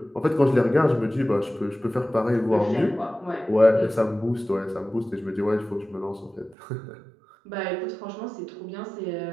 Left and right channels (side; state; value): left; drops out; at 6.6 s